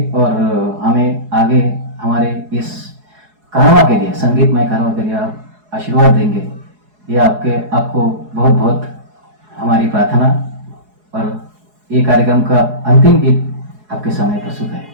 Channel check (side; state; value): left; late; 4.8 ms